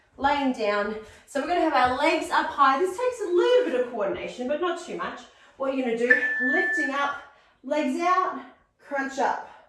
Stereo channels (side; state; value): both; identical; correlation 1.00